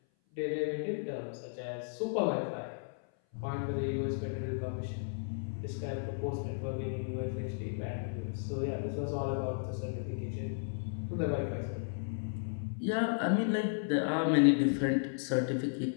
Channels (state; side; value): silent; right; 55 dB below the other